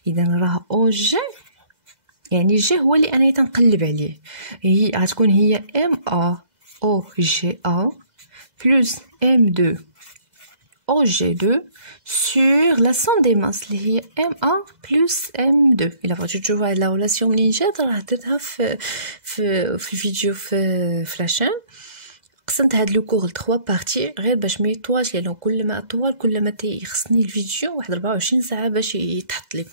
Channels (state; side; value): late; left; 2.0 ms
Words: اذا راه او جي يعني جي هو اللي انا تنقلب عليه، هي غتكون هي ام ا او جي ا بلس ام 2 او جي 2 sur la somme des masses اللي هي M1 plus M2. إلا بغيتو تشوفوا هاد لا ريلاسيون منين جات راه درتها في الفيديو في لاشين. قسمت هاد لو كور ل 3 بارتي غير باش ما يطولش، لانه كل ما طول كل ما تيخصني الفيديو واحد 24 ساعه باش يتحط